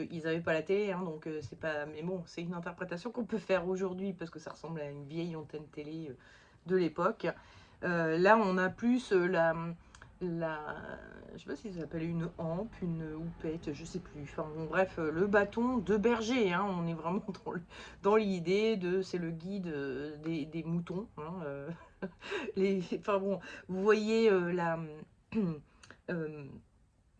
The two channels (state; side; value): identical; both; correlation 1.00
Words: ils n'avaient pas la télé, hein, donc c'est pas. Mais bon, c'est une interprétation qu'on peut faire aujourd'hui, parce que ça ressemble à une vieille antenne télé de l'époque. Là, on a plus la, je sais pas si ça s'appelle une hampe, une houppette, je sais plus. Enfin bon, bref, le bâton de berger, hein, on est vraiment dans l'idée de, c'est le guide des moutons, hein, enfin bon, vous voyez euh,